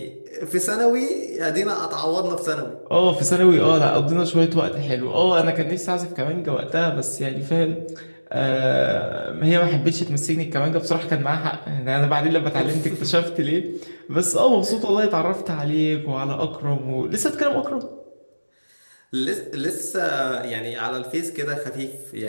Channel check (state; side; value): inverted; both; correlation -1.00